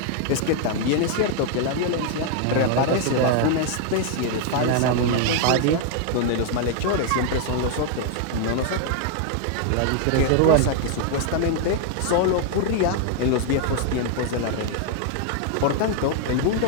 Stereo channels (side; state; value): both; different; correlation 0.00